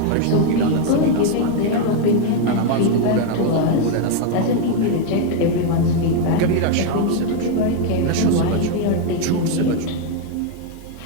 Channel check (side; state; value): both; different; correlation 0.01